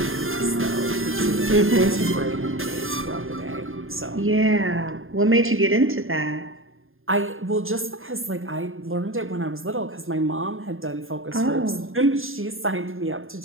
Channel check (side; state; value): left; late; 0.60 ms